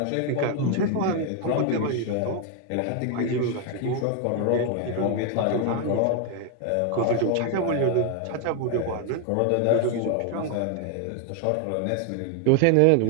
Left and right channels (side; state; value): both; different; correlation 0.01